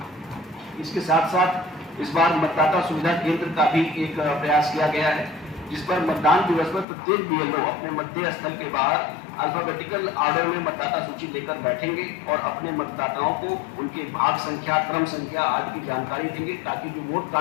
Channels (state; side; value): drops out; right; at 6.9 s